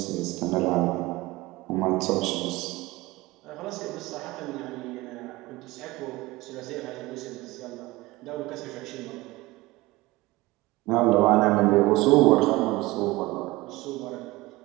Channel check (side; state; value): left; quieter; 20.4 dB